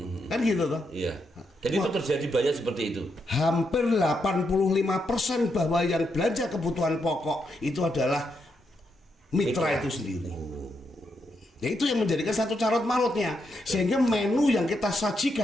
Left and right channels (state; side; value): normal; both; correlation 0.81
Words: kan gitu toh? Iya. Jadi itu terjadi banyak seperti itu. Hampir 85% bahwa yang belanja kebutuhan pokok itu adalah mitra itu sendiri. Ya itu yang menjadikan satu carut marutnya, sehingga menu yang kita